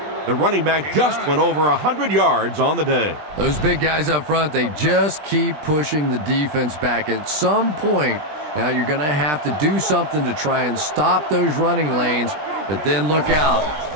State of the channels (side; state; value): left; late; 20 ms